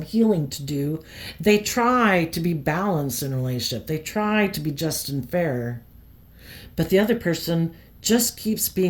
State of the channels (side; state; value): both; identical; correlation 1.00